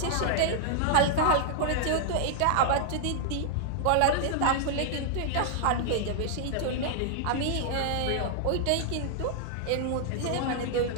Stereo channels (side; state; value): both; different; correlation -0.01